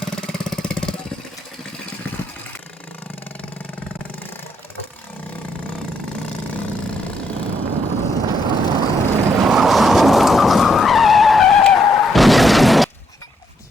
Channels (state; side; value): normal; both; correlation 0.75